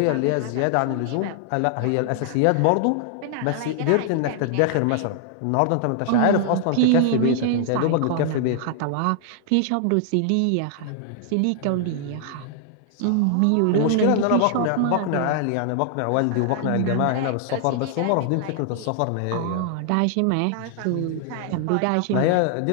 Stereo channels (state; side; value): different; both; correlation 0.00